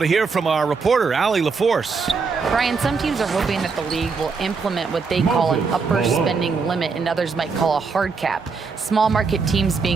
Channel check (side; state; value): left; quieter; 4.9 dB